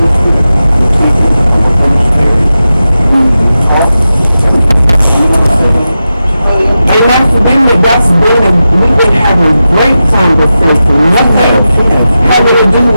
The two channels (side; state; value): both; inverted; correlation -0.91